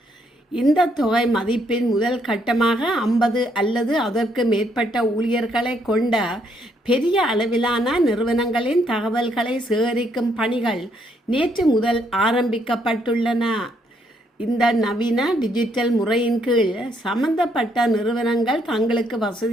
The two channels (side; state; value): both; normal; correlation 0.72